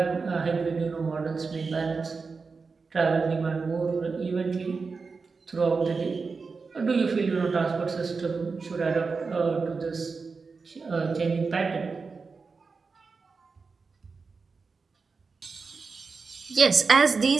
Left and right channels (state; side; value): quieter; left; 4.6 dB